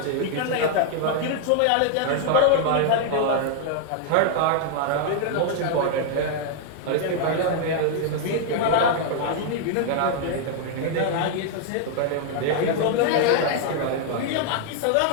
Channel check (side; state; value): both; different; correlation 0.00